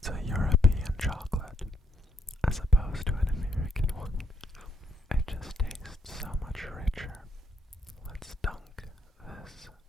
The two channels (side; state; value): both; normal; correlation 0.72